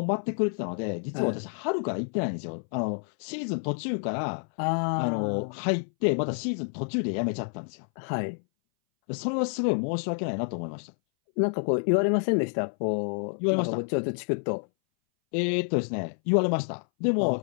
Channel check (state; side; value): silent; right; 59 dB below the other